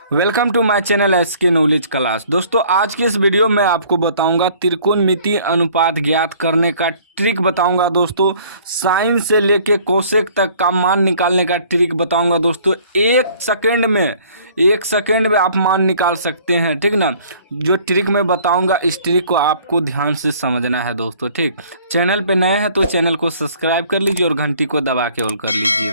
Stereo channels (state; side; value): inverted; both; correlation -0.55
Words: Welcome to my channel SK knowledge class. दोस्तों आज की इस वीडियो में आपको बताऊंगा त्रिकोणमिति अनुपात ज्ञात करने का ट्रिक बताऊंगा। दोस्तों साइन से लेके कोसेक तक का मान निकालने का ट्रिक बताऊंगा। दोस्तों एक सेकंड में आप मान निकाल सकते हैं, ठीक ना। जो ट्रिक मैं बताऊंगा इस ट्रिक को आपको ध्यान से समझना है दोस्तों, ठीक। चैनल पे नए हैं तो चैनल को सब्सक्राइब कर लीजिए और घंटी को दबा के ऑल कर लीजिए।